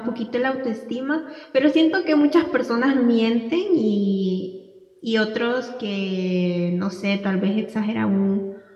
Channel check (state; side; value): identical; both; correlation 1.00